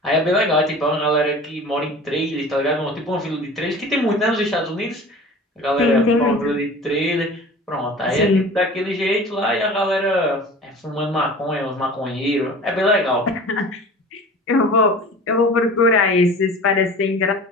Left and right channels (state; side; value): normal; both; correlation 0.40